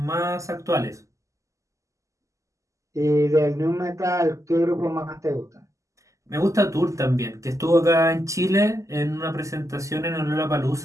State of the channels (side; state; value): left; late; 0.16 ms